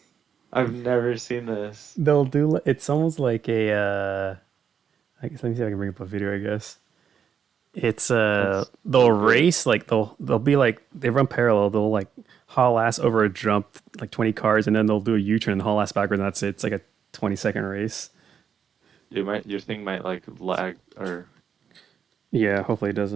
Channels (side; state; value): left; quieter; 7.5 dB